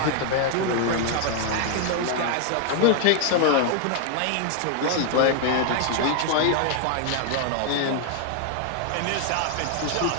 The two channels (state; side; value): different; both; correlation 0.00